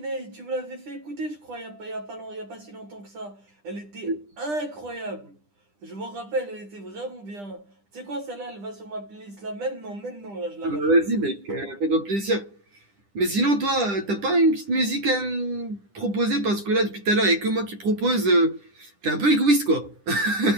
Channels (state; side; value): late; left; 10 ms